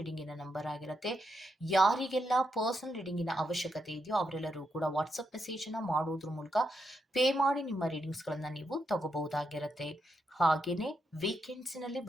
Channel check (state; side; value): normal; both; correlation 0.81